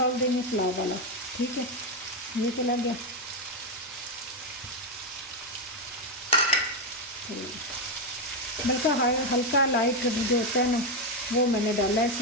देंगे, पुलाव वाला। ठीक है, ये चला गया। तो बल्कि हल्का लाइट जो होता है ना वो मैंने डाला है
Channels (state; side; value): normal; both; correlation 0.06